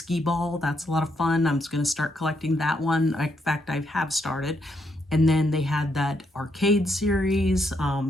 ball. That's a lot of fun. I'm just going to start collecting that one. In fact, I have started. And then they had that arcade series,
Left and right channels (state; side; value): normal; both; correlation 0.77